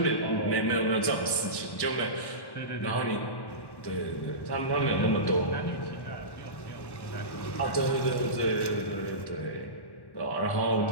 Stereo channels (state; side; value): late; right; 1.1 ms